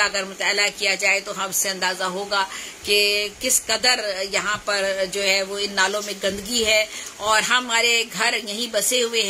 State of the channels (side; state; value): both; identical; correlation 1.00